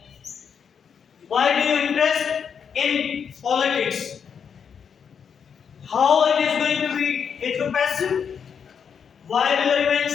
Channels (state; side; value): quieter; right; 7.0 dB